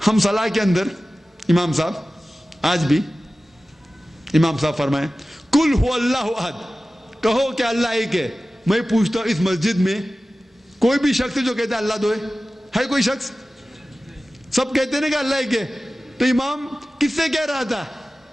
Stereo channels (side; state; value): both; normal; correlation 0.96